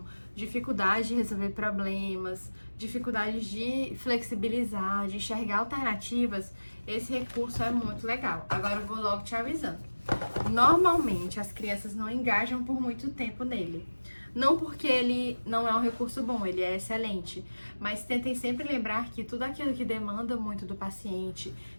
dificuldade de resolver problemas, dificuldade de flexibilizar, de enxergar alternativas, esse recurso é muito legal. Agora eu vou logo te avisando. Normalmente, as crianças não engajam por muito tempo nele. Não porque ele não é um recurso bom, ele é excelente, mas tentem sempre lembrar que tudo aquilo que demanda muito do paciente,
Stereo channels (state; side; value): inverted; both; correlation -1.00